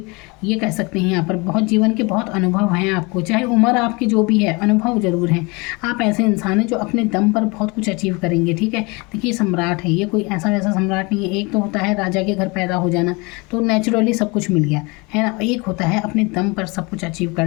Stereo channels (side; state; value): right; quieter; 27.2 dB